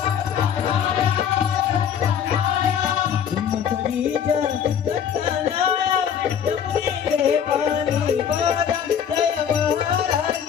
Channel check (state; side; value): quieter; right; 8.4 dB